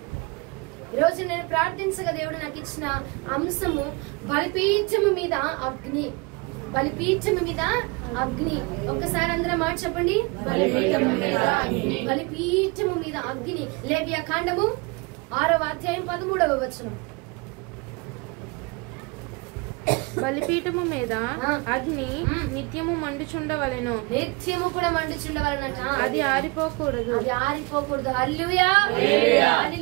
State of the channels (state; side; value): quieter; left; 28.1 dB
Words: ఈరోజు నేను ప్రార్థించగా దేవుడు నాకు ఇచ్చిన అంశము బలిపీఠము మీద అగ్ని. బలిపీఠము మీద అగ్ని. ఒక్కసారి అందరం మాట చెప్పండి, బలిపీఠము మీద అగ్ని. బలిపీఠము మీద అగ్ని. లేవియా కాండము 6వ అధ్యాయం 13వ వచనం. బలిపీఠము మీద అగ్ని నిత్యము మండుచుండవలెను. నిత్యము కూడా మండుచుండవలనట. అది ఆరిపోకూడదు. అది ఆరిపోకూడదు. హల్లెలూయా,